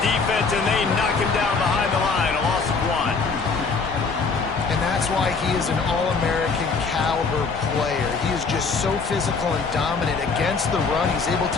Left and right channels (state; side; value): quieter; right; 4.6 dB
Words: defense, and they knock him down behind the line. A loss of 1. And that's why he is an All-American caliber player. He is just so physical and dominant against the run. He's able